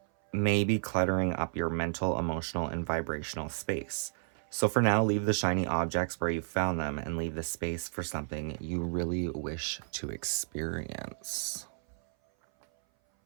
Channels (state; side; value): silent; left; 56 dB below the other